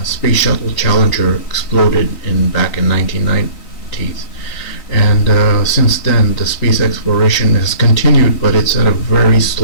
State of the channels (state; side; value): late; right; 3.9 ms